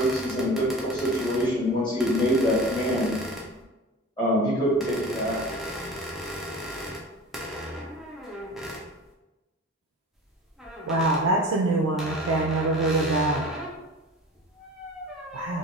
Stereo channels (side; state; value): both; normal; correlation 0.37